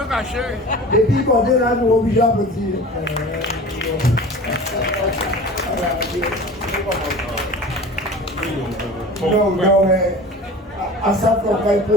caché. Et puis, quand on est là, nous obligés à petit. Non, mais à ça, on va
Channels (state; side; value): normal; both; correlation 0.39